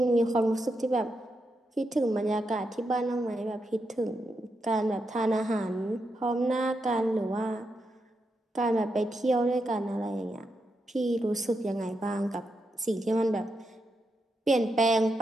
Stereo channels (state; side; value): normal; both; correlation 0.84